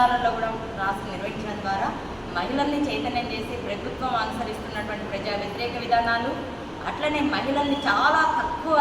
కూడా క్లాసులు నిర్వహించడం ద్వారా మహిళల్ని చైతన్యం చేసి ప్రభుత్వం అనుసరిస్తున్నటువంటి ప్రజా వ్యతిరేక విధానాలు, అట్లనే మహిళల్ని చాలా తక్కువ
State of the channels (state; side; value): identical; both; correlation 1.00